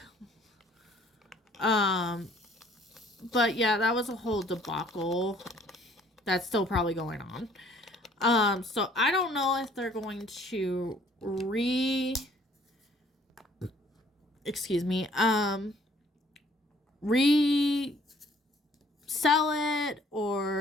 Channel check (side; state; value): both; normal; correlation 0.59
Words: But yeah, that was a whole debacle that's still probably going on. So I don't know if they're going to resell it